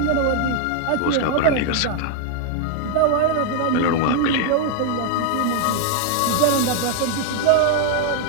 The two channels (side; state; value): both; different; correlation 0.00